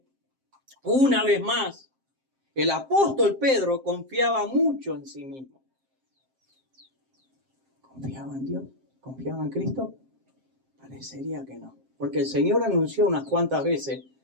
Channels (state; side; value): late; left; 7.6 ms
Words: una vez más, el apóstol Pedro confiaba mucho en sí mismo. ¿Confiaba en Dios? ¿Confiaba en Cristo? Parecería que no. Porque el Señor anunció unas cuantas veces